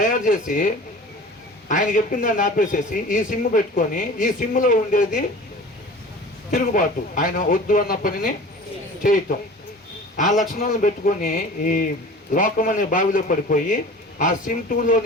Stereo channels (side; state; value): both; normal; correlation 0.40